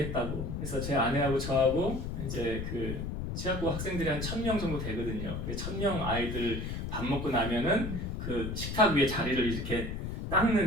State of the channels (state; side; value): noise; left; rumble, 4 dB below the sound